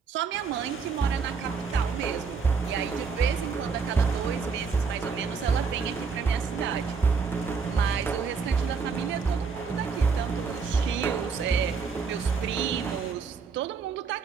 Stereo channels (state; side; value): quieter; left; 5.4 dB